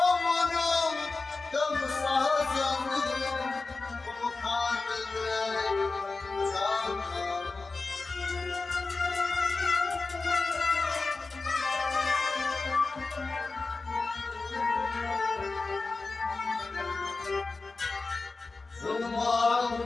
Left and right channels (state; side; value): quieter; right; 3.8 dB